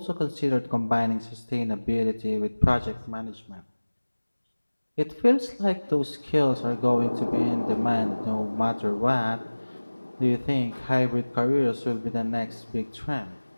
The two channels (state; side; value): inverted; both; correlation -1.00